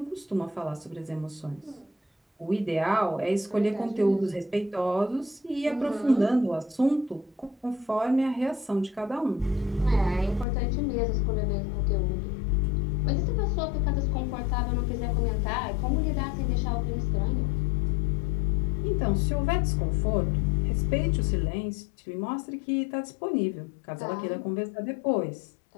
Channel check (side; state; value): right; drops out; at 10.5 s